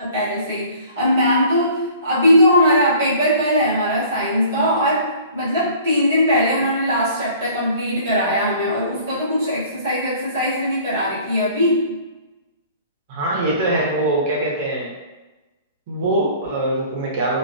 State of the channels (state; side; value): inverted; both; correlation -0.51